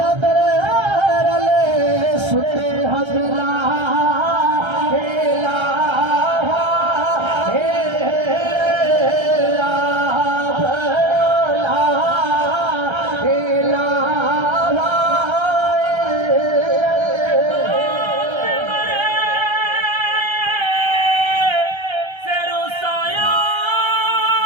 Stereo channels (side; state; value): left; late; 1.3 ms